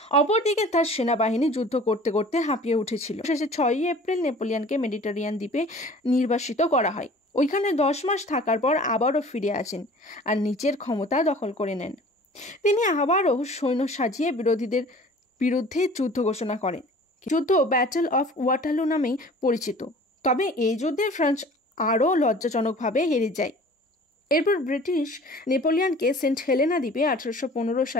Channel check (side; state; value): both; normal; correlation 0.46